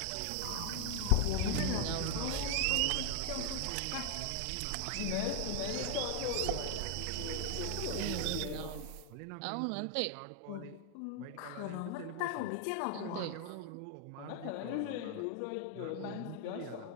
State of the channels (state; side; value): different; both; correlation 0.00